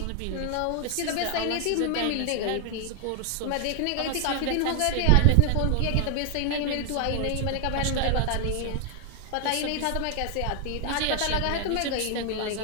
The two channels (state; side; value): different; both; correlation 0.00